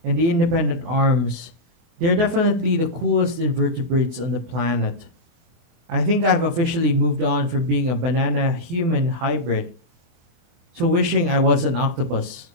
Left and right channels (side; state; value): left; late; 24 ms